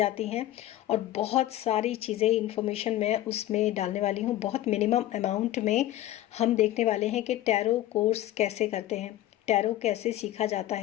हैं, और बहुत सारी चीज़ें इन्फॉर्मेशन मैं उसमें डालने वाली हूँ। बहुत मिनिमम अमाउंट में हम देखने वाले हैं कि टैरो कोर्स कैसे करते हैं, टैरो कैसे सीखा जाता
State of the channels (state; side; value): quieter; right; 14.1 dB